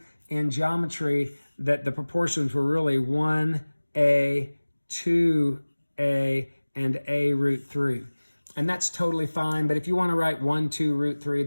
in geometry that the proportions were really 1a, 2a, and a root 3. And that's totally fine, but if you want to write 1, 2, root 3,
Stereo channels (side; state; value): both; inverted; correlation -1.00